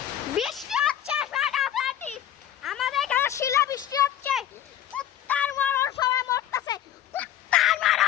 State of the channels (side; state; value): right; quieter; 11.2 dB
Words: বৃষ্টি হচ্ছে ফাটাফাটি আমাদের এখানে শিলা বৃষ্টি হচ্ছে কুত্তার মরণ সবাই মরতেছে কুত্তার